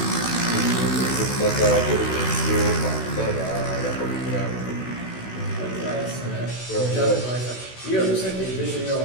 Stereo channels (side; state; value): right; late; 16 ms